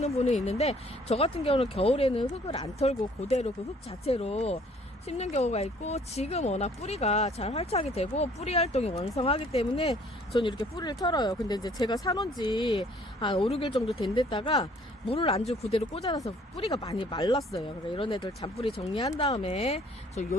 분이 있는데, 저 같은 경우는 겨울에는 흙을 안 털고 그대로 그 흙 자체로 심는 경우가 있고, 지금 워낙 뿌리가 잘 활착이 되고 뿌리 활동이 왕성하기 때문에 저는 이렇게 뿌리를 털어요. 근데 이제 제가 사놓은 지 한 5, 6일 정도 된 데다가 물을 안 주고 그대로 꽂아놔서 뿌리가 많이 말랐어요. 그러니까 이런 애들 잔뿌리 정리한 다음에 저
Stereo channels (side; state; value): both; normal; correlation 0.58